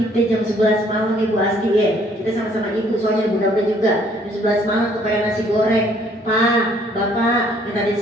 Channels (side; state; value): both; normal; correlation 0.62